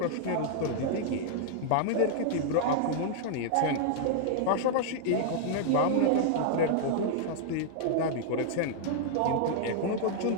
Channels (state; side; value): different; both; correlation -0.01